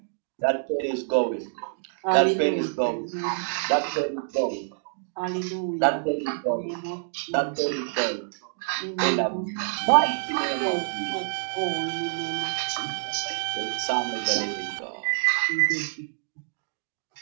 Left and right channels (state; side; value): silent; left; digital silence